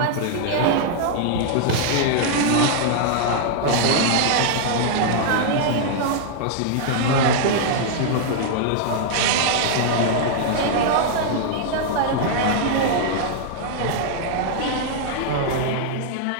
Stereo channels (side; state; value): both; different; correlation -0.01